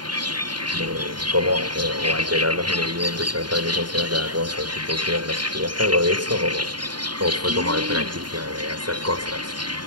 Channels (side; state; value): left; late; 0.71 ms